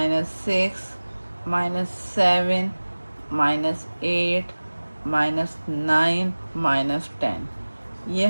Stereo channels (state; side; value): inverted; both; correlation -1.00